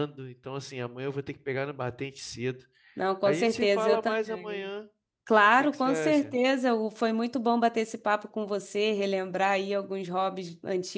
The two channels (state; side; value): identical; both; correlation 1.00